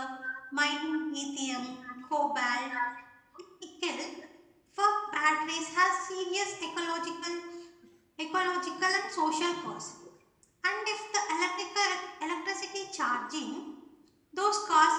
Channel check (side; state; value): both; identical; correlation 1.00